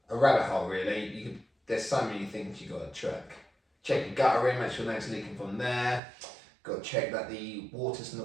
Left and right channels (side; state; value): left; drops out; at 6.0 s